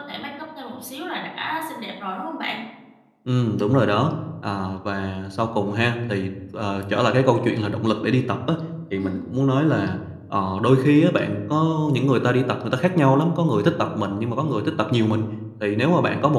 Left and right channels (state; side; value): identical; both; correlation 1.00